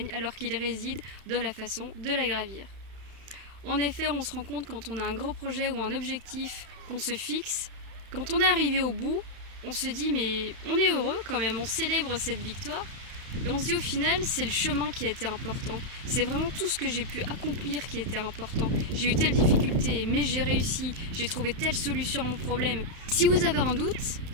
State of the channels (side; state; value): left; late; 31 ms